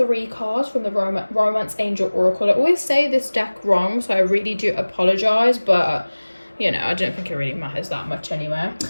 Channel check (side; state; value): both; inverted; correlation -1.00